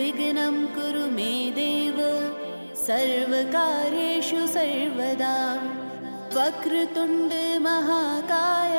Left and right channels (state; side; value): inverted; both; correlation -1.00